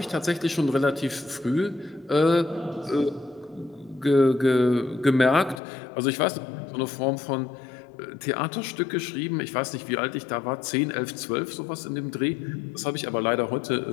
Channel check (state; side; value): drops out; right; at 5.6 s